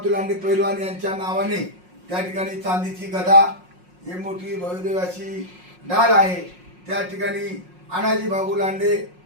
लांडे पैलवान यांच्या नावाने त्या ठिकाणी चांदीची गदा ही मोठी भव्यदिव्य अशी ढाल आहे. त्या ठिकाणी अनाजी भाऊ लांडे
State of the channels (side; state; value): left; late; 5.5 ms